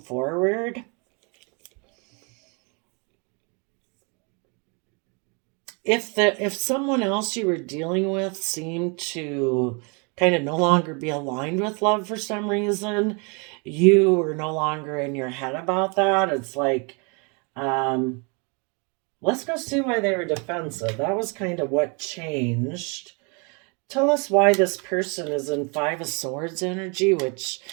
If someone else you were dealing with seemed to kind of no longer be aligned with love for some reason, you were no longer in your head about that. It's like, um, let's go see why they were defensive. That was kind of what changed. Tell us why this person is in Five of Swords energy, which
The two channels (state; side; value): quieter; left; 33.1 dB